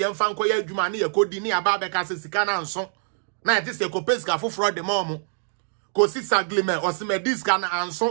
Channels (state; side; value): silent; left; digital silence